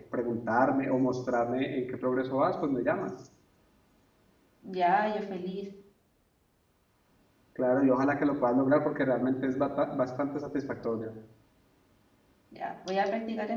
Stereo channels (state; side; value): identical; both; correlation 1.00